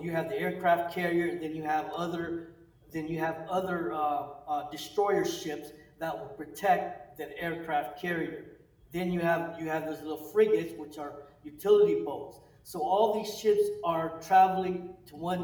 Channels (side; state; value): both; identical; correlation 1.00